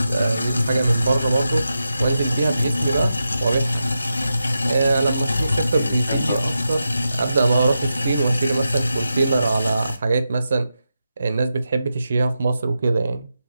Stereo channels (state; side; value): inverted; both; correlation -0.89